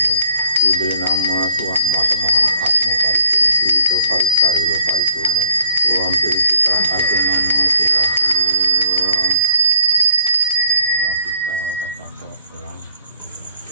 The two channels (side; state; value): both; inverted; correlation -0.62